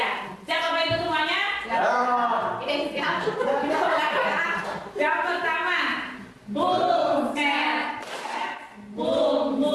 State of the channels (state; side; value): identical; both; correlation 1.00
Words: ya. Siap Bapak Ibu semuanya? Ya. Siap. Yang pertama, boom, snap, boom,